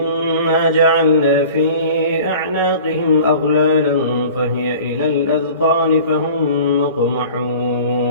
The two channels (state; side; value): inverted; both; correlation -0.43